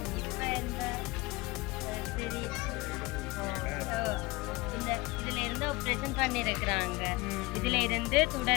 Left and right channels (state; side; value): quieter; right; 22.5 dB